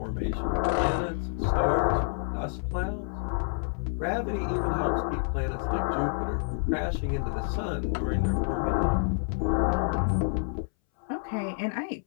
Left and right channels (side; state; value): right; silent; 59 dB below the other